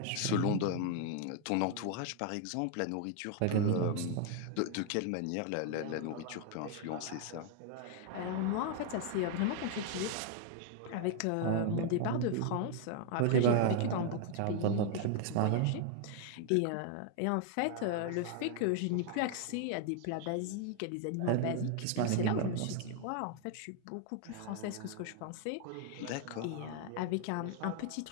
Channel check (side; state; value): both; different; correlation 0.00